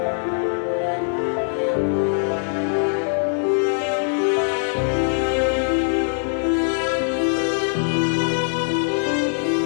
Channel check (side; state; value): right; silent; 64 dB below the other